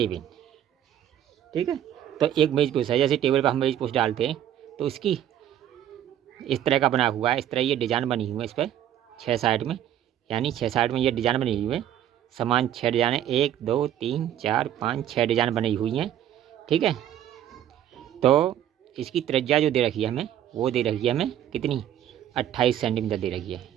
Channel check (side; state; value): left; quieter; 11.0 dB